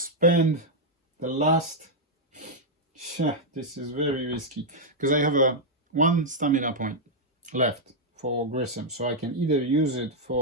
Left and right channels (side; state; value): both; normal; correlation -0.03